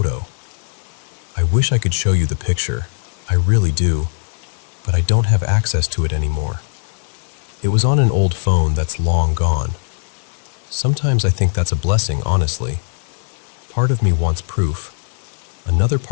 I wish I could show you the picture. I really do. But I don't have access to it anymore. It was on an old phone that's long gone. Sometimes I think that's a blessing, honestly. Part of me wants proof. Another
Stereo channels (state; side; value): silent; right; 66 dB below the other